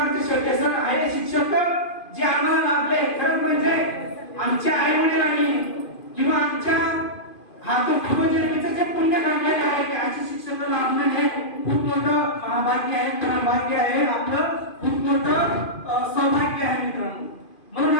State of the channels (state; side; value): late; right; 2.5 ms